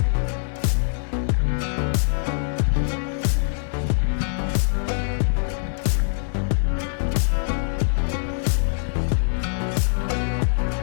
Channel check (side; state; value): right; silent; digital silence